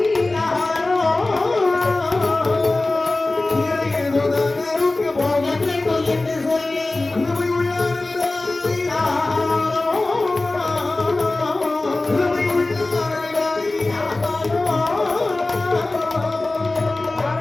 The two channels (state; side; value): quieter; right; 3.0 dB